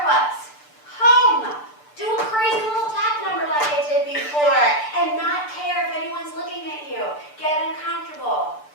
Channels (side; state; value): right; late; 6.8 ms